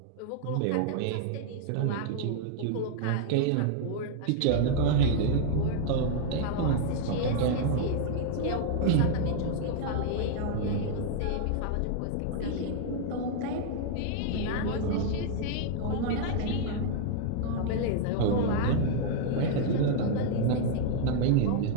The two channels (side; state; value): both; different; correlation -0.01